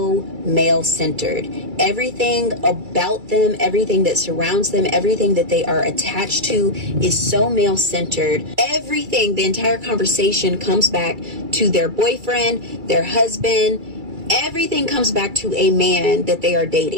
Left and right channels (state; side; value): late; left; 2.3 ms